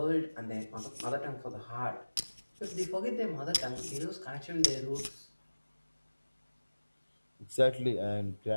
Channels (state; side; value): inverted; both; correlation -1.00